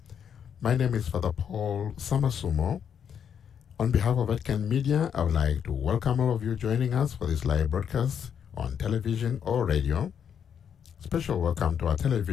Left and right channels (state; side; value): quieter; right; 8.0 dB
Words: My name is Father Paul Samasumo. On behalf of Vatican Media, I would like to welcome all of you joining us for this live broadcast on television or radio. Special welcome to our